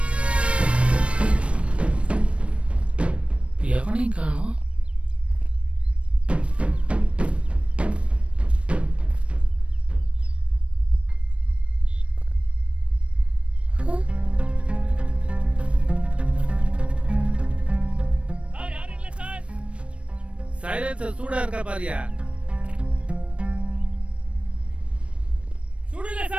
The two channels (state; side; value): late; left; 0.061 ms